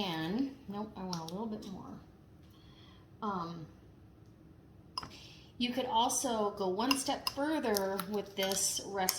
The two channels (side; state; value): both; identical; correlation 1.00